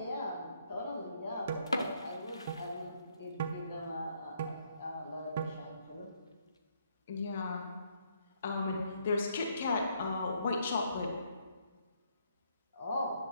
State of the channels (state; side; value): inverted; both; correlation -0.71